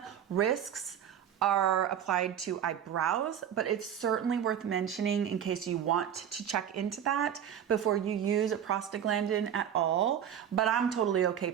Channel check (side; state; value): left; quieter; 9.2 dB